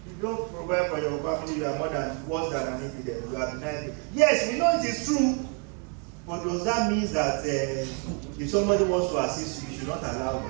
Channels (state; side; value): quieter; left; 38.5 dB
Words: If you don't provide for your family, you are worse than an infidel. You are denied. Yes, we know it is true. But does that mean that if somebody wants to assist you, you should not allow